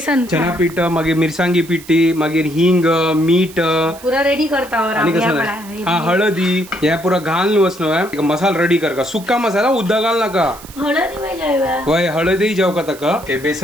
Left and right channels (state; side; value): noise; right; hiss, 19 dB below the sound